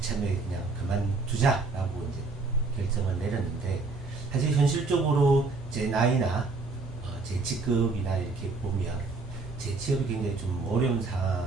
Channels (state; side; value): quieter; left; 3.8 dB